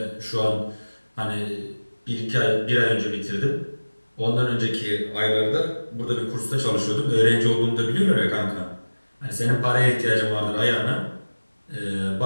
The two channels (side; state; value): both; inverted; correlation -1.00